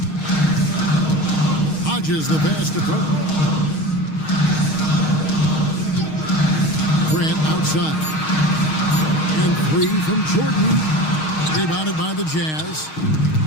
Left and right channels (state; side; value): late; right; 6.4 ms